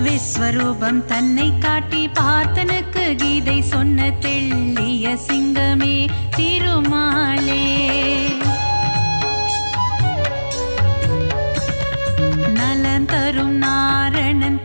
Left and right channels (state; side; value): inverted; both; correlation -1.00